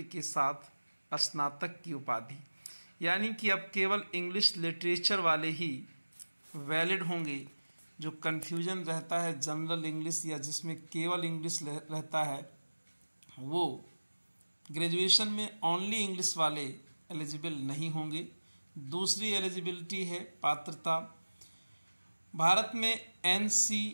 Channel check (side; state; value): both; inverted; correlation -1.00